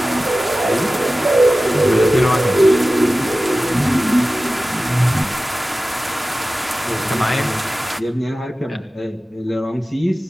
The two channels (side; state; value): both; normal; correlation 0.96